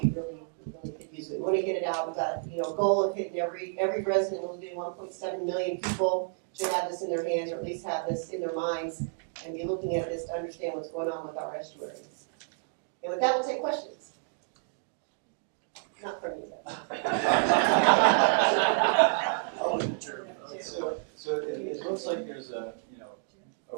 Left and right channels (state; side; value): silent; left; digital silence